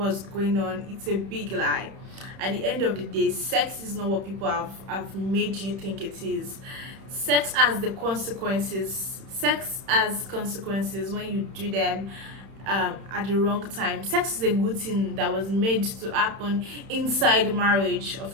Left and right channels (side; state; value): left; late; 31 ms